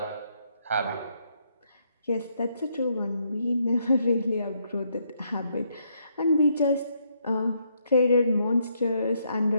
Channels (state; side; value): inverted; both; correlation -0.74